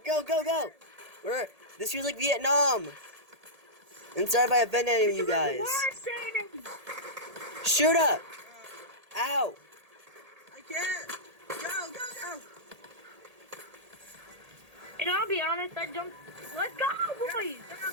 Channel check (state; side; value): late; left; 1.8 ms